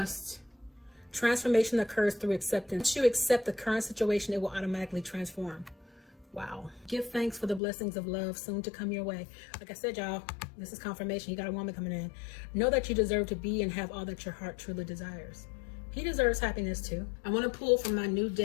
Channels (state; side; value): drops out; right; at 7.6 s